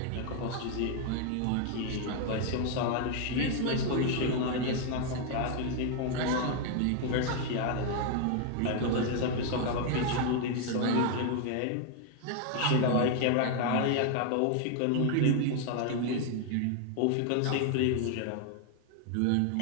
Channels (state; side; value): different; both; correlation 0.00